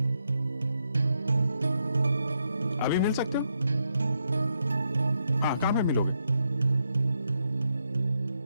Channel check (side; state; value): both; inverted; correlation -0.80